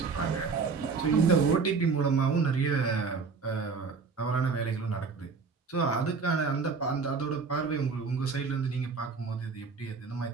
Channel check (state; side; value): quieter; left; 4.9 dB